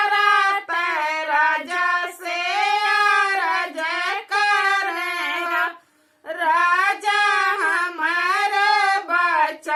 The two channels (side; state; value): both; identical; correlation 1.00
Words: राजा से अरज करेगा राजा हमार